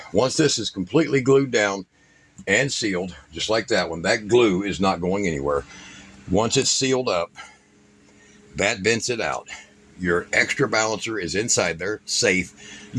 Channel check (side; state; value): both; identical; correlation 1.00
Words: once this is completely glued down and sealed, just like that one, that glue is not going anywhere. Once it's sealed up, that vents it out. Your extra balancer is inside there, safe.